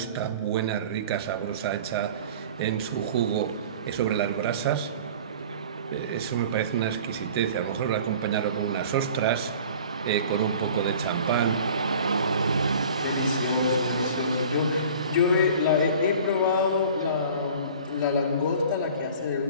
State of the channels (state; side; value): inverted; both; correlation -0.44